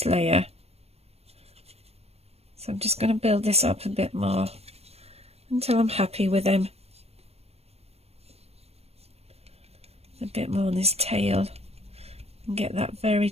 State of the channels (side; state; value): left; late; 0.30 ms